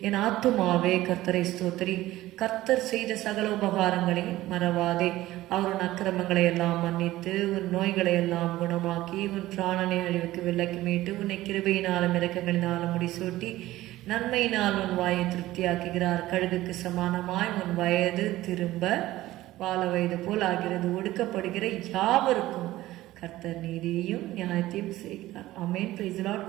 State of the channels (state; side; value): quieter; left; 16.3 dB